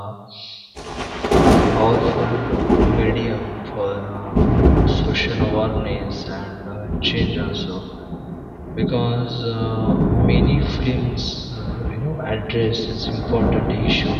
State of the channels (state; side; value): identical; both; correlation 1.00